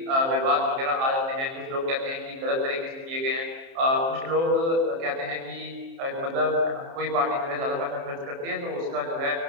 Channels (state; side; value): late; left; 30 ms